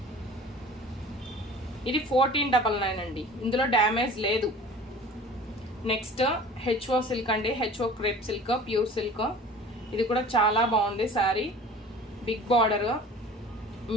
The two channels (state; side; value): normal; both; correlation 0.43